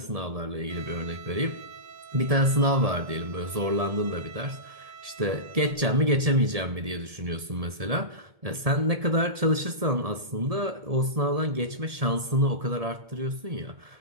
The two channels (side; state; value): left; late; 1.7 ms